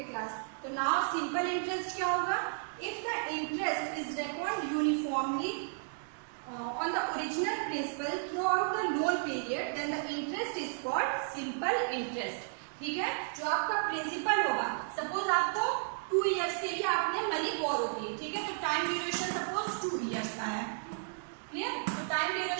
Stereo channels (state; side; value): silent; left; digital silence